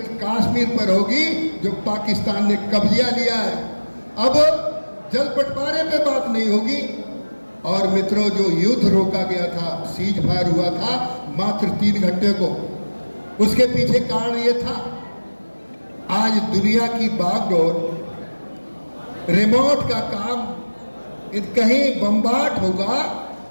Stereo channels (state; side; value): inverted; both; correlation -1.00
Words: कश्मीर पर होगी जो पाकिस्तान ने कब्जा लिया है। अब जल बंटवारे पे बात नहीं होगी। और मित्रों, जो युद्ध रोका गया था, सीज फायर हुआ था मात्र 3 घंटे को, उसके पीछे कारण यह था, आज दुनिया की बागडोर, रिमोट का काम, कहीं बम्बार्ड होगा